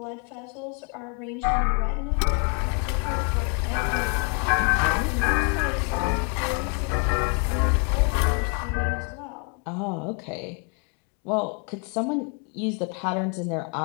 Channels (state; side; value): quieter; right; 38.0 dB